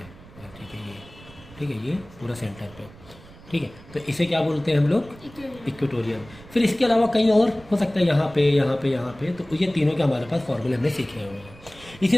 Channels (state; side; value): noise; right; rumble, 21 dB below the sound